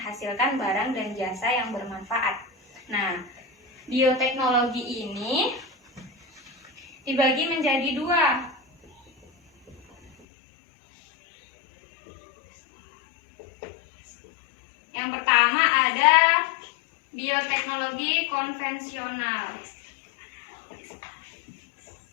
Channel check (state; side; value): drops out; right; at 10.1 s